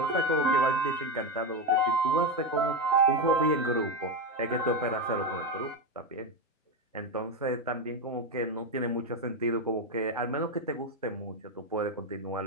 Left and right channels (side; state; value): both; normal; correlation 0.12